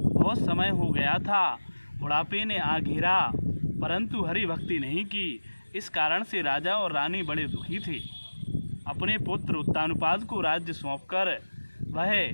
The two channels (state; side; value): inverted; both; correlation -1.00